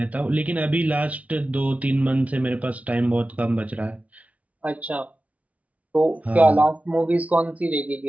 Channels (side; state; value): left; late; 0.068 ms